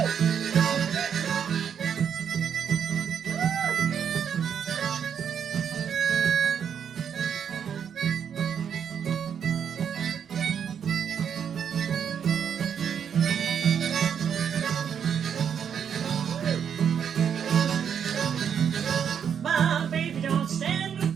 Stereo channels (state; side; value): quieter; left; 7.9 dB